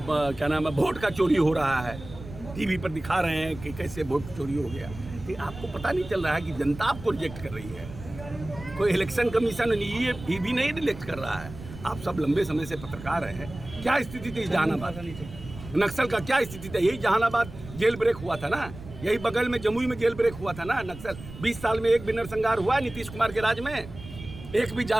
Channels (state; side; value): noise; right; rumble, 14 dB below the sound